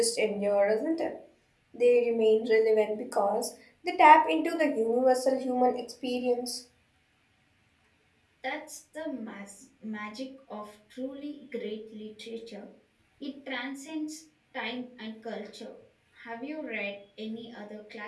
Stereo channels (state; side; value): identical; both; correlation 1.00